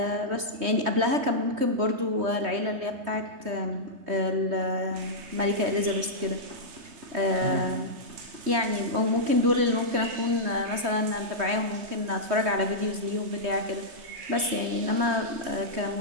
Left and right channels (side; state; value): left; late; 3.2 ms